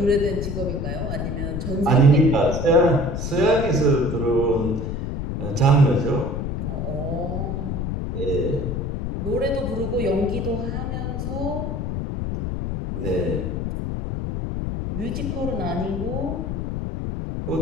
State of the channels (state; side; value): noise; left; rumble, 3 dB below the sound